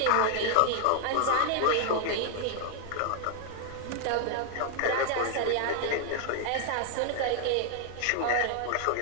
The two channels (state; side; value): different; both; correlation 0.00